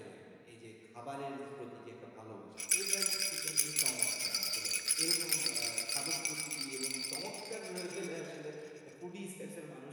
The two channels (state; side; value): identical; both; correlation 1.00